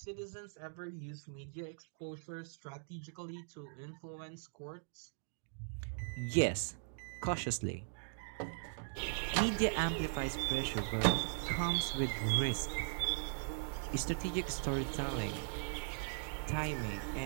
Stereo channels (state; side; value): silent; left; digital silence